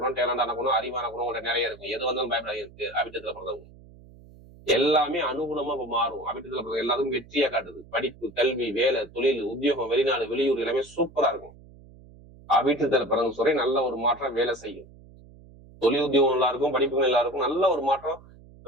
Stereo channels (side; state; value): right; noise; hum, 22 dB below the sound